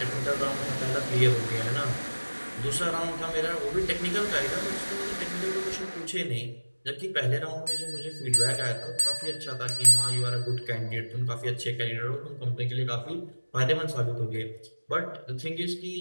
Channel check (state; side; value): inverted; both; correlation -1.00